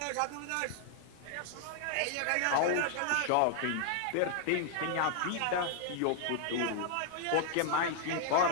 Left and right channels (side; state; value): both; different; correlation 0.00